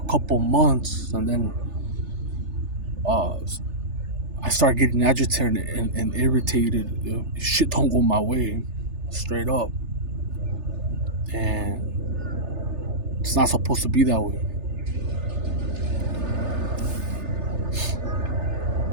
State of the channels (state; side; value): late; left; 3.3 ms